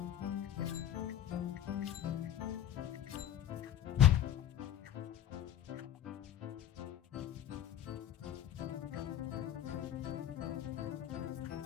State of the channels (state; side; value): quieter; right; 11.0 dB